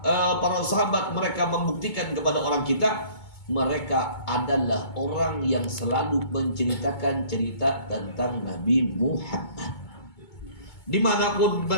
para sahabat mereka membuktikan kepada orang kita, mereka adalah orang yang selalu menceritakan cerita tentang Nabi Muhammad. Dimanapun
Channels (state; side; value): late; right; 2.2 ms